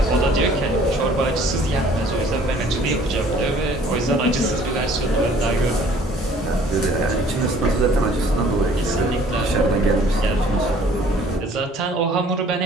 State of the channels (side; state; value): both; normal; correlation 0.55